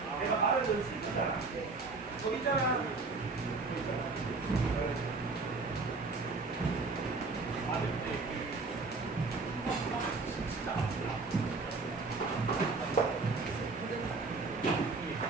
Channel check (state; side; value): quieter; left; 3.9 dB